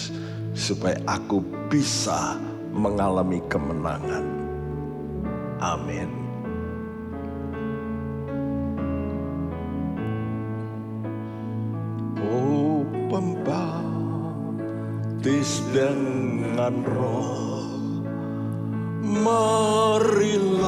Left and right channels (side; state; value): both; identical; correlation 1.00